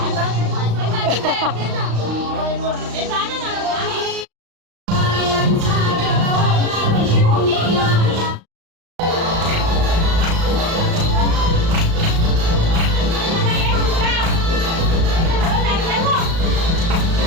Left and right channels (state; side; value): late; left; 35 ms